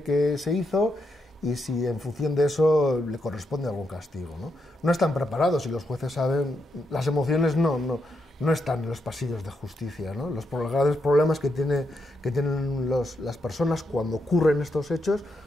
que se hizo y si en función de eso le corresponde algún castigo, ¿no? No están preparados y los jueces saben, las emociones no están en los pasillos de justicia, ¿no? Los grandes problemas que tienen las personas cuando ocurren estos hechos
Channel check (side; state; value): both; normal; correlation 0.82